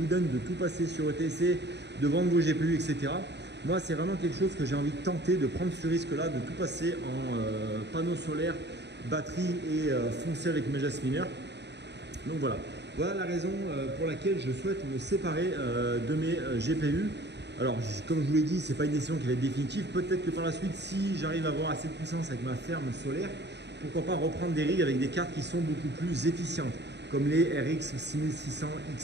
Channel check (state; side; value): late; left; 0.50 ms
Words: donne de tout passer sur ETC, de vendre vos GPU, etc. Moi, c'est vraiment quelque chose que j'ai envie de tenter, de prendre ce risque-là, de tout passer en panneaux solaires, batterie et foncer avec mes Jasminer. Donc voilà, voilà la raison pour laquelle je souhaite me séparer de mes GPU. Alors, comme je vous l'ai dit, ce n'est pas une décision qui va être définitive. Peut-être que par la suite, si j'arrive à avoir assez de puissance avec ma ferme solaire, pourquoi pas reprendre des rigs avec des cartes qui sont beaucoup plus efficientes, comme les RX 6600